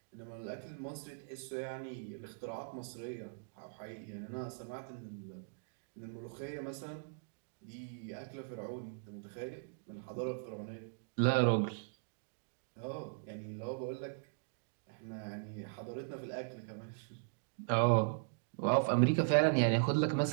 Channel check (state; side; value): silent; left; digital silence